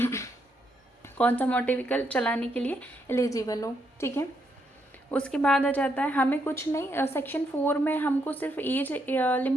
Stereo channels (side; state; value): both; normal; correlation 0.77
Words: कौन सा मोटर व्हीकल चलाने के लिए एलिजिबल हो। ठीक है, उसके बाद आ जाता है हमें कुछ नहीं, सेक्शन 4 में हमको सिर्फ एज